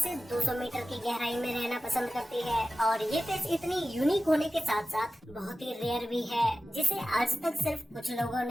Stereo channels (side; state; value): both; normal; correlation 0.94